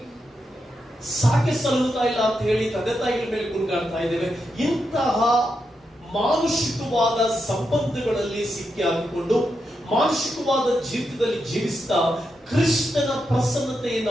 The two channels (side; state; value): both; normal; correlation 0.85